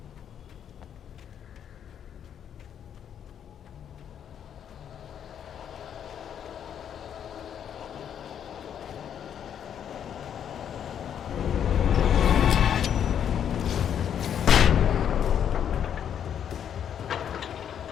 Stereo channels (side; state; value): right; quieter; 8.9 dB